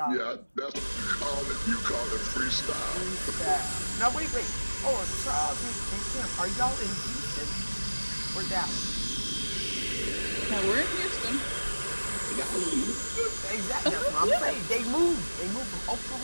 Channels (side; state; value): both; inverted; correlation -1.00